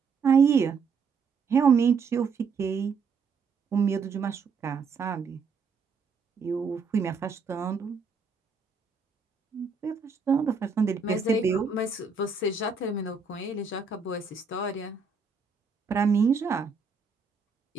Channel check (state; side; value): quieter; left; 5.1 dB